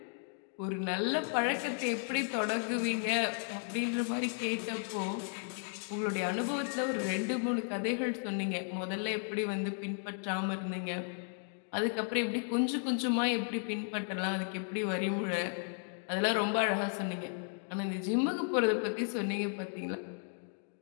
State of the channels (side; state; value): right; silent; 55 dB below the other